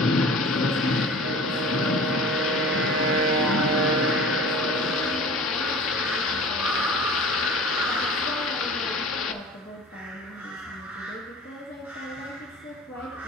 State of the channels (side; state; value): both; normal; correlation 0.40